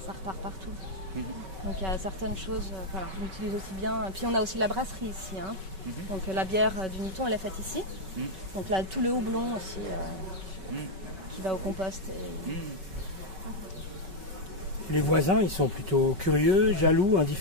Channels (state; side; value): late; left; 5.3 ms